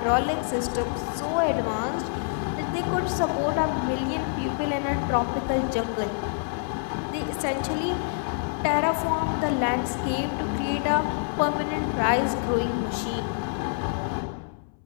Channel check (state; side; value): silent; right; 59 dB below the other